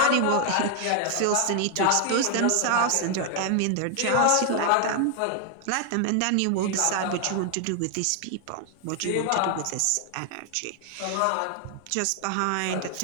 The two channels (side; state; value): both; different; correlation 0.00